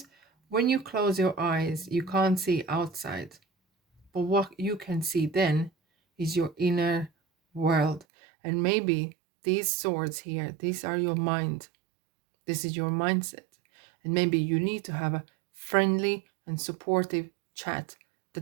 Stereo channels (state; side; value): drops out; left; at 8.1 s